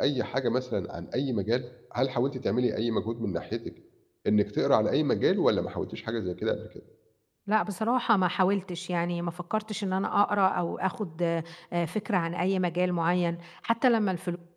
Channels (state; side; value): identical; both; correlation 1.00